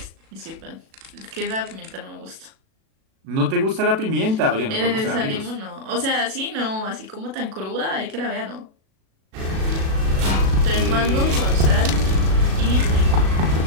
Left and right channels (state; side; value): late; left; 37 ms